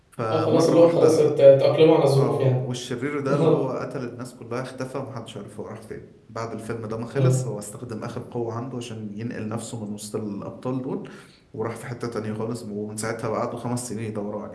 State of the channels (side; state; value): both; identical; correlation 1.00